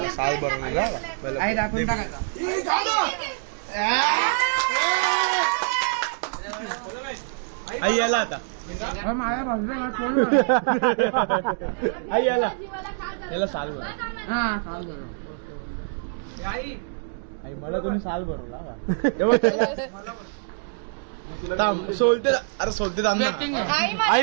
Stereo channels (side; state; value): left; silent; digital silence